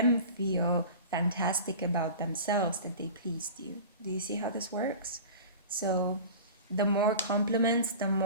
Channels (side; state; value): both; inverted; correlation -0.37